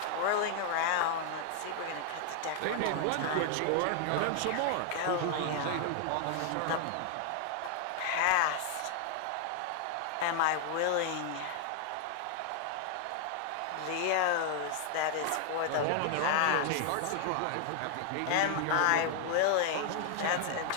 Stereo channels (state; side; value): different; both; correlation 0.00